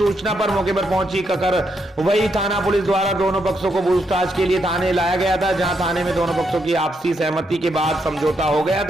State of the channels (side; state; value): both; normal; correlation 0.79